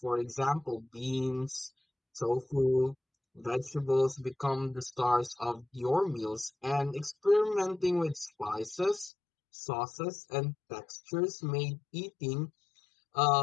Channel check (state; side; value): drops out; right; at 9.1 s